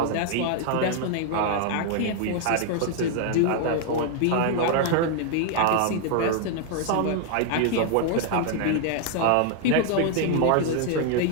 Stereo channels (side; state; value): both; different; correlation 0.00